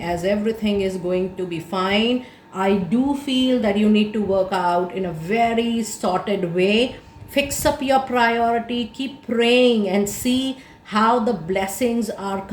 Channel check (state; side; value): identical; both; correlation 1.00